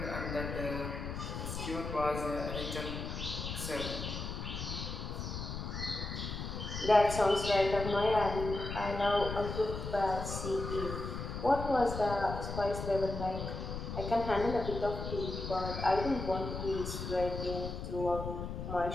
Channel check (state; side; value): noise; left; rumble, 5 dB below the sound